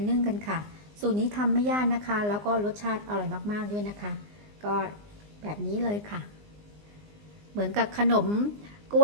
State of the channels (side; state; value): left; late; 19 ms